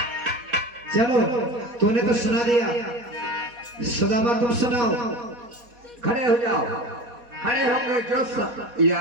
चलो तूने तो सुना दिया, सुदामा तुम सुनाओ। खड़े हो जाओ, खड़े होकर जो सब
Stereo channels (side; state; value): left; late; 4.2 ms